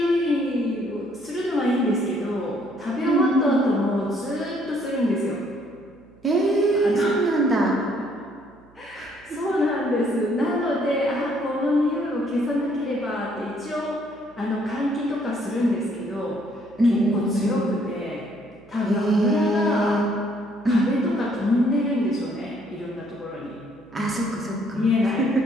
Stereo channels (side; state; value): right; noise; hum, 28 dB below the sound